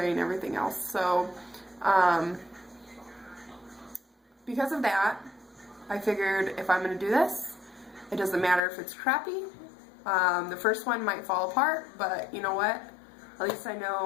and everything else, so because of that, I figured if I'm going to do this, it doesn't matter if it's crappy. The first one might fall apart, but you know what? At least I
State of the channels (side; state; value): right; drops out; at 8.6 s